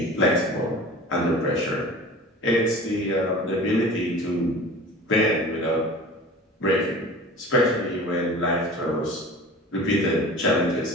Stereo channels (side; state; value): both; normal; correlation 0.39